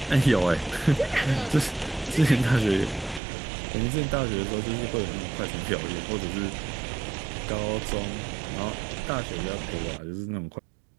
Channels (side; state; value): left; drops out; at 3.2 s